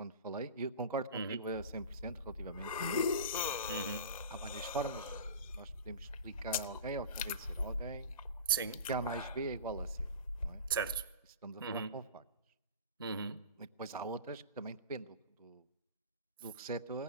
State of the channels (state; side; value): inverted; both; correlation -0.33